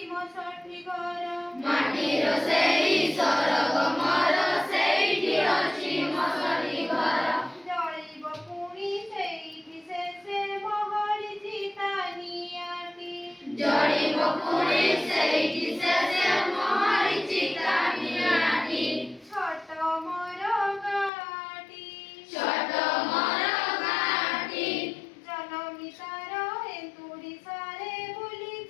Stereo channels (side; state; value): right; drops out; at 21.1 s